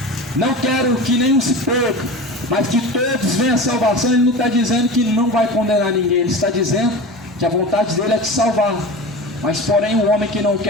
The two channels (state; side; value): normal; both; correlation 0.31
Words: não quero que nenhum se perca, mas que todos venham à salvação, ele não está dizendo que não vai condenar ninguém. Ele está dizendo que a vontade dele é te salvar. Mas porém o homem que não